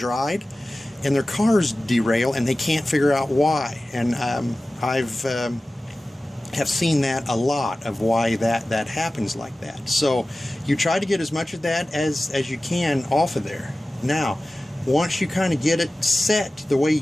and their cars derail and they can't figure out why. And I've have seen that a lot, of why that happens like that. So you try to get as much of that as you can off of there. Now, once you kind of get it set the way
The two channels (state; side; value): normal; both; correlation 0.96